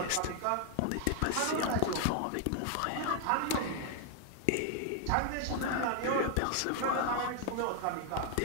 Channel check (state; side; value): different; both; correlation 0.00